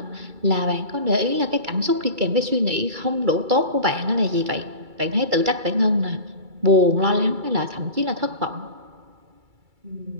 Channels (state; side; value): late; left; 2.3 ms